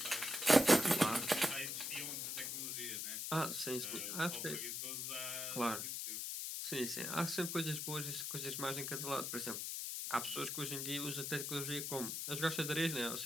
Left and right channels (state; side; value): noise; left; hiss, 3 dB below the sound